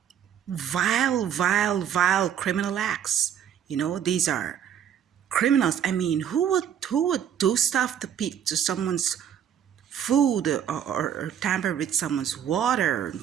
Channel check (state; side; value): quieter; left; 9.1 dB